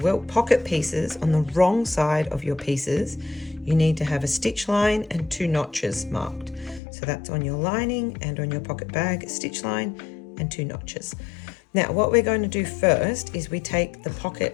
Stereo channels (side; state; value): right; drops out; at 6.8 s